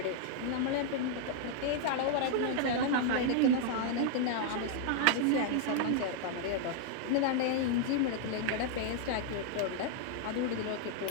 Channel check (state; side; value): different; both; correlation 0.00